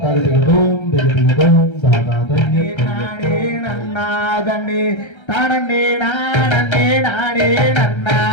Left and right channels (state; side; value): late; right; 1.3 ms